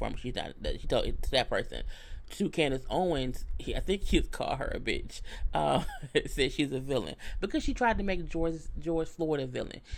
She told it to that person. To Candace Owens, I think he called her a bitch. Said she's a villain because she tried to make George Floyd a villain.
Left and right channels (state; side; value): identical; both; correlation 1.00